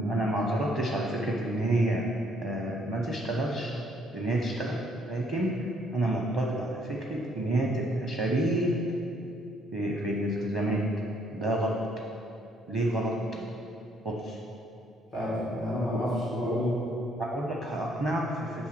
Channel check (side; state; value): both; normal; correlation 0.67